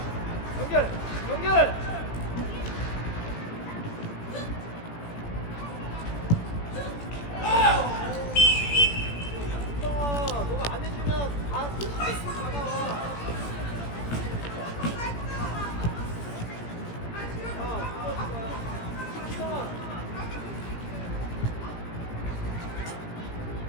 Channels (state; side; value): late; right; 17 ms